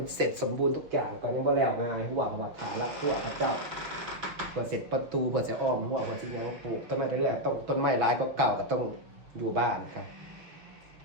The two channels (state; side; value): late; left; 6.1 ms